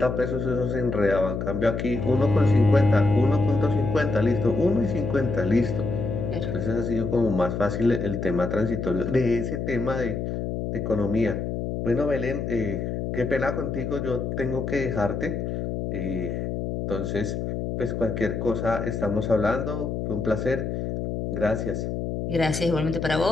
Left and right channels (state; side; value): noise; left; hum, 3 dB below the sound